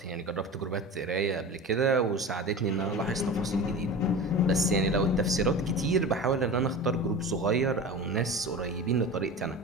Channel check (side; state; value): both; normal; correlation 0.32